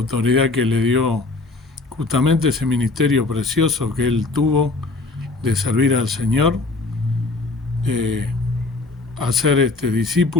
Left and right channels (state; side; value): quieter; right; 3.4 dB